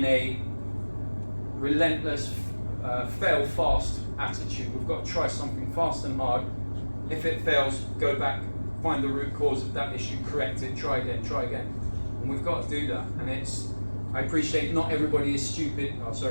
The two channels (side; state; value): both; inverted; correlation -1.00